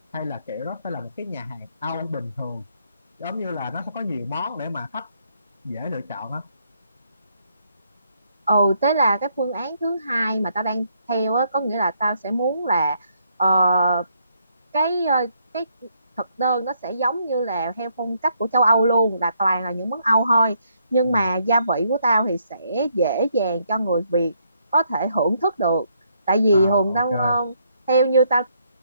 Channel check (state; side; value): inverted; both; correlation -0.73